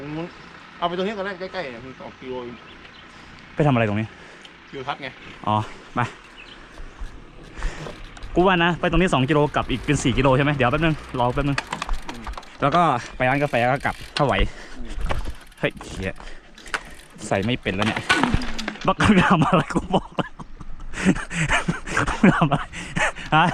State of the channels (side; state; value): both; identical; correlation 1.00